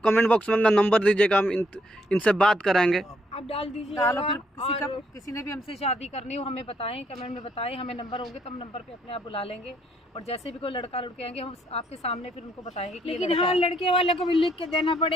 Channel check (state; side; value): normal; both; correlation 0.71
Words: कमेंट बॉक्स में अपना नंबर दीजिएगा, हम इनसे बात कराएंगे। आप डाल दीजिए। डालो, फिर किसी ने भी हमसे शादी करनी हो हमें बताएं, कमेंट में बताएं, हमें नंबर होंगे तो हम नंबर पे अपने आप बुला लेंगे। और जैसे भी कोई लड़का लड़के आएंगे हम आपके सामने फिर उनको बताएंगे कि ये लेकिन लड़का हाँ, है। लड़के वाले को भी लिख के देना